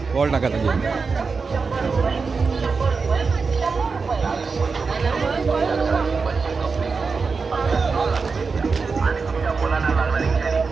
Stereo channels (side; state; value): left; quieter; 4.8 dB